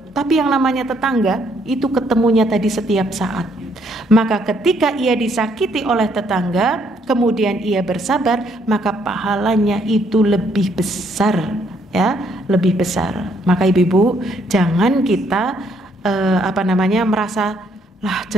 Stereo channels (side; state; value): both; normal; correlation 0.69